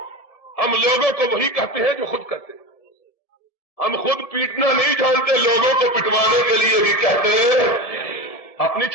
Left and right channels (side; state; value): right; late; 1.7 ms